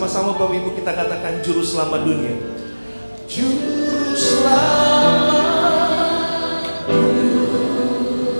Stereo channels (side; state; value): both; inverted; correlation -1.00